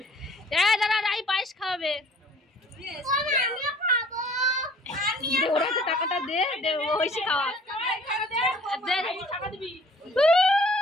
দাদা রাই পায়েস খাওয়াবে, ওরা তো টাকাটা দে দে, ওইসি খাওয়া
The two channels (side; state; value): both; normal; correlation 0.53